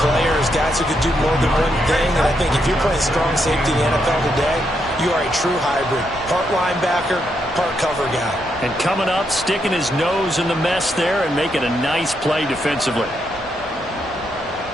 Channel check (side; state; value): both; normal; correlation 0.79